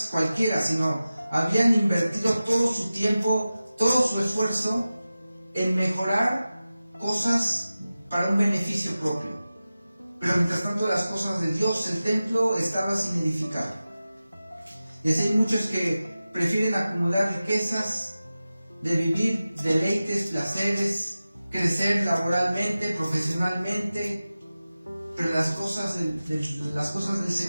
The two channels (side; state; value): both; inverted; correlation -0.95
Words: cualquiera, sino habían invertido todo su tiempo, todo su esfuerzo en mejorar cosas para un beneficio propio. Pero mientras tanto las cosas de Dios, el templo estaba sin edificar. Y así hay muchos que prefieren acumular riquezas, de vivir deleites, placeres, crecer laboralmente, profesionalmente, pero las cosas del